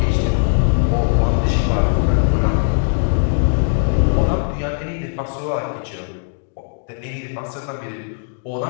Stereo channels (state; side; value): silent; right; digital silence